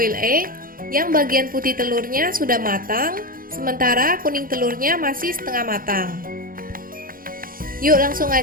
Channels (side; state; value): left; late; 0.41 ms